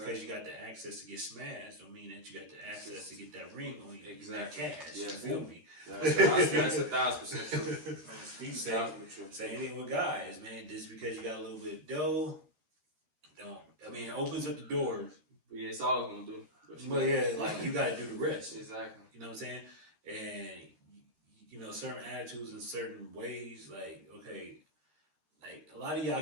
you got the access to get smashed, don't mean that you got the access to get that ring on you. Exactly. That cash. Yeah. You feel me? That's 1,000% true. Same thing with guys, man. Just because you got a little bit of dough, it opens up the doors. But yeah, it's all it's gonna do. But yeah, like you gotta do the rest. Exactly. You know what I'm saying? And certain attitudes in certain ways, like, okay, like a lot of y'all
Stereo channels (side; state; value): left; late; 13 ms